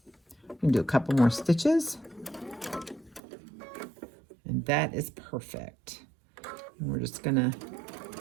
We can do a couple more stitches. And that is perfect. And we're just going to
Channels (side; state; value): left; drops out; at 3.2 s